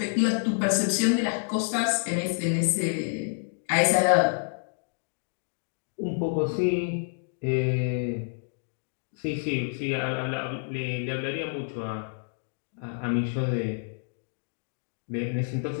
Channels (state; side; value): silent; right; digital silence